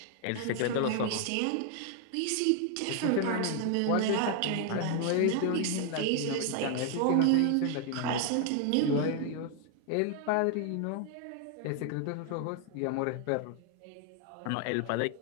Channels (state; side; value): different; both; correlation 0.00